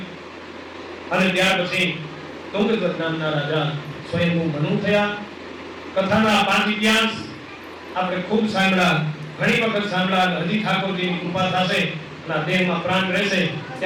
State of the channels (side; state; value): both; identical; correlation 1.00